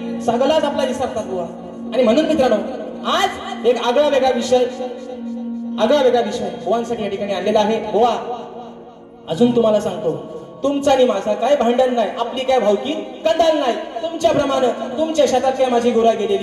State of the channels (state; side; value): identical; both; correlation 1.00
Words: सगळाच आपला विसरतात बुवा आणि म्हणून मित्रांनो आज एक आगळा वेगळा विषय बुवांसाठी या ठिकाणी आणलेला आहे बुवा अजून तुम्हाला सांगतो तुमचा आणि माझा काय भांडण नाही आपली काय भावकी कंदाल नाही तुमच्याप्रमाणे तुमच्या शेतात काय माझी गुरा